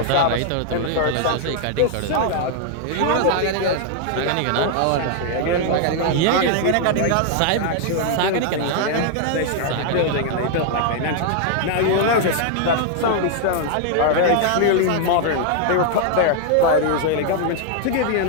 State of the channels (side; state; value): both; different; correlation 0.00